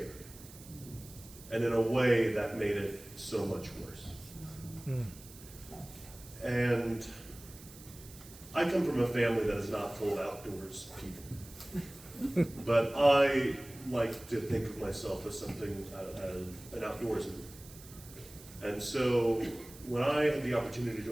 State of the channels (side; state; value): right; noise; hiss, 19 dB below the sound